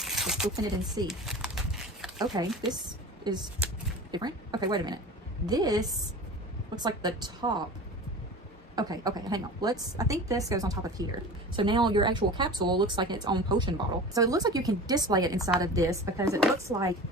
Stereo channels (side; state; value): both; normal; correlation 0.35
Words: open it and see. Okay, this is different. Okay, wait a minute. This looks like the top. Okay, hang on. I think this goes on top of here. So now your actual capsule looks like its own potion bottle. So it looks like you can display it inside of this because it looks like